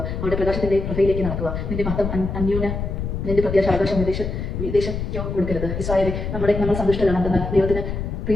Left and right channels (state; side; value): noise; left; rumble, 4 dB below the sound